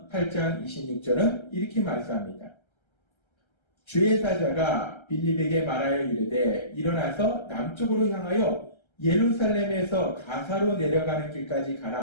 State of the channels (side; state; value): right; late; 1.3 ms